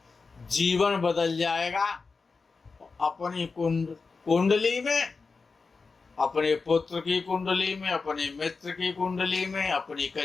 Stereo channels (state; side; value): quieter; right; 4.4 dB